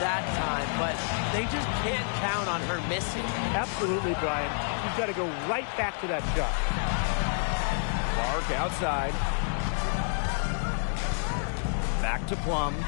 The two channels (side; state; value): right; silent; 59 dB below the other